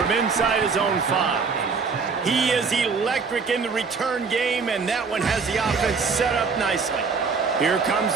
inside his own 5. He is electric in the return game, and that one has the offense set up nicely. Here comes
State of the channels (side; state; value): left; quieter; 5.0 dB